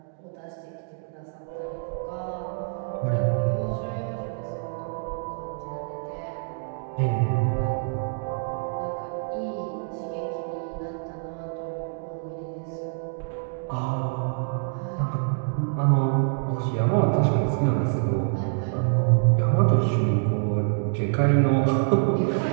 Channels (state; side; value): silent; left; digital silence